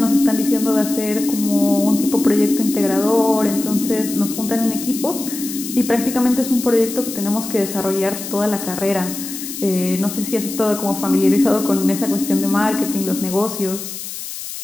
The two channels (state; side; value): noise; left; hiss, 9 dB below the sound